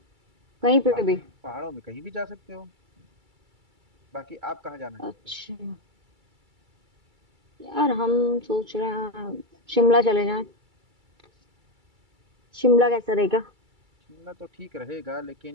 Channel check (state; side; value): late; left; 2.3 ms